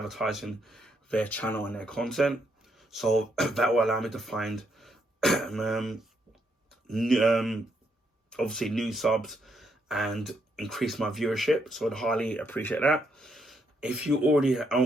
their channel and their content. So that will allow me to find obviously new subs and increase my viewership. So I'd highly appreciate that. If you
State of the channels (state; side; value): normal; both; correlation 0.76